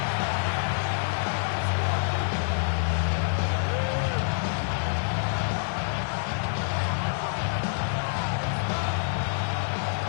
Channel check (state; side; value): silent; right; digital silence